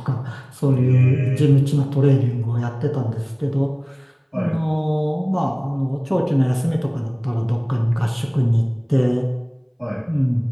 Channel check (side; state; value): both; identical; correlation 1.00